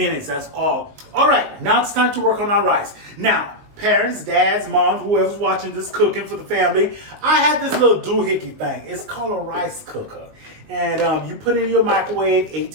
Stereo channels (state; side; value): late; left; 19 ms